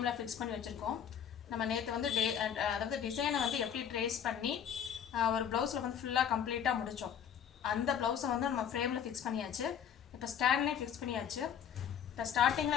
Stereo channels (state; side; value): quieter; right; 8.5 dB